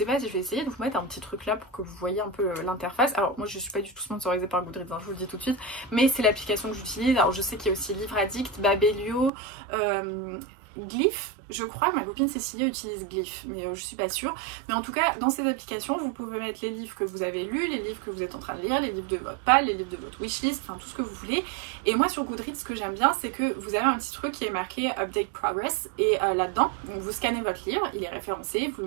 pas si je vais essayer de vous mettre un petit truc là pour que vous voyez un peu l'interface. Alors moi je suis pas du tout sponsorisée par Goodreads, hein, je vous le dis tout de suite, mais c'est l'application que j'utilise. Alors je sais qu'il y a aussi Livre Addict, Babelio, Glyph. Je crois que ma copine Cécilia utilise Glyph, mais je suis pas sûre. Mais en tout cas, dans ces applications, vous pouvez mettre les livres que vous avez lus, les livres que vous êtes en train de lire, les livres de votre pal, les livres de votre wishlist, enfin tout ce que vous voulez. Et moi sur Goodreads, ce que j'aime bien, c'est que vous avez un petit truc qui est marqué Update Progress. Et là-dedans, vous scannez votre livre, il est référencé, vous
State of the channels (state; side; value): drops out; left; at 9.3 s